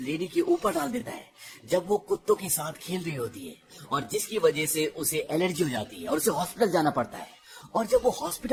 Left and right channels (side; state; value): both; identical; correlation 1.00